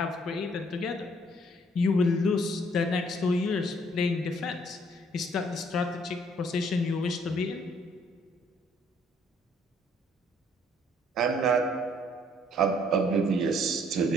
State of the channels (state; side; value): normal; both; correlation 0.63